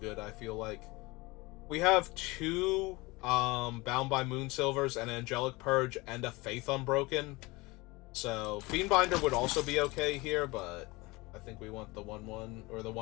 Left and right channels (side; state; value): right; quieter; 23.2 dB